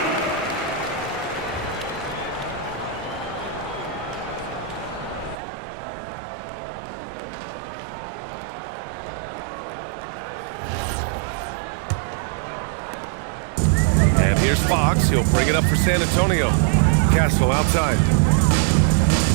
And here's Fox. He'll bring it up for San Antonio. Castle outside.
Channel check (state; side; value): drops out; left; at 5.4 s